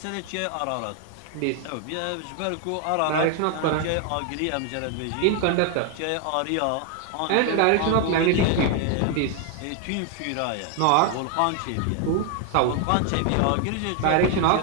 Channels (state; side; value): different; both; correlation 0.00